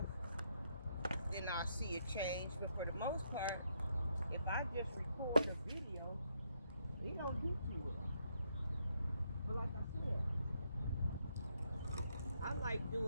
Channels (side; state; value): both; inverted; correlation -0.76